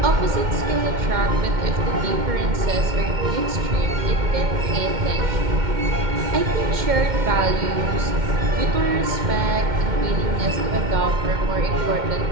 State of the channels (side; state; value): left; late; 2.1 ms